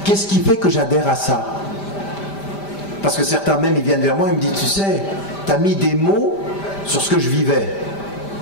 Qu'est-ce qui fait que j'adhère à ça? Parce que certains même, ils viennent vers moi et me disent tu sais, tu as mis des mots sur ce que je vivais.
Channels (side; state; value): right; late; 5.1 ms